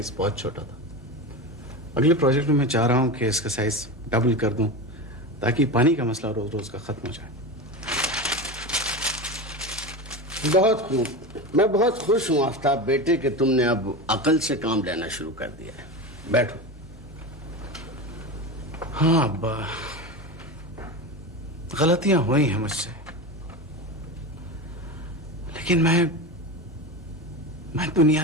बहुत छोटा था। अगले प्रोजेक्ट में मैं चाह रहा हूं कि इसका साइज डबल कर दूं ताकि पानी का मसला रोज रोज का खत्म हो जाए। बहुत खूब, मैं बहुत खुश हूं आफ्ताब बेटे कि तुमने अब अकल से काम लेना शुरू कर दिया है। बैठो। हाँ अब्बा, गलतियां हुई हैं मुझसे, लेकिन मैं दुनिया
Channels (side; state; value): both; normal; correlation 0.23